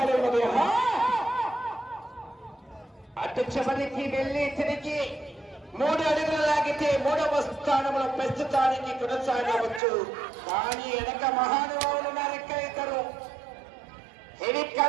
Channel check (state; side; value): drops out; left; at 9.8 s